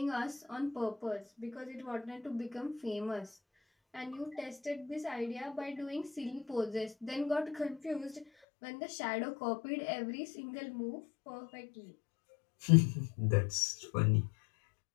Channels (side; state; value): right; drops out; at 8.2 s